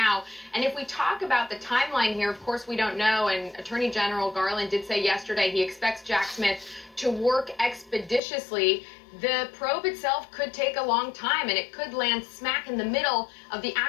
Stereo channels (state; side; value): drops out; right; at 8.2 s